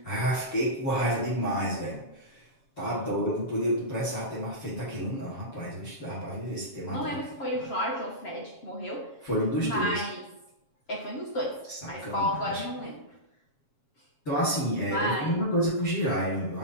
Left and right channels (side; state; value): right; late; 7.4 ms